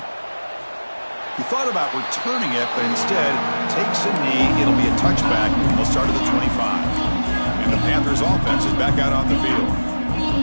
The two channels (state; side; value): inverted; both; correlation -1.00